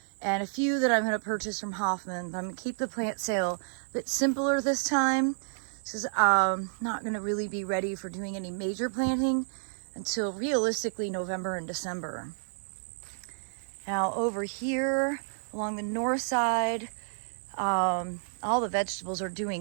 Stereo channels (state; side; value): silent; left; digital silence